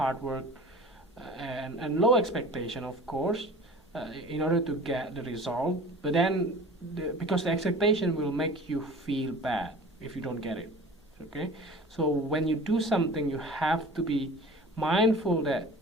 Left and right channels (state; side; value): normal; both; correlation 0.41